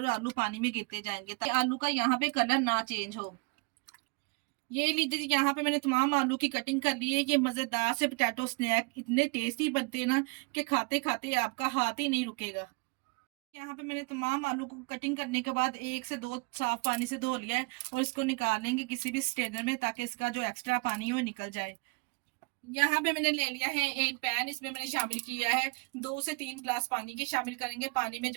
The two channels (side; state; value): left; quieter; 31.7 dB